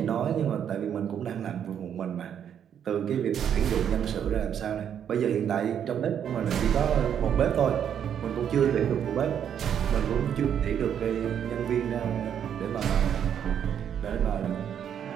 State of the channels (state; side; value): quieter; left; 8.8 dB